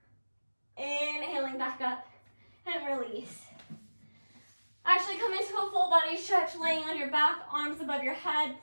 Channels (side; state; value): both; inverted; correlation -1.00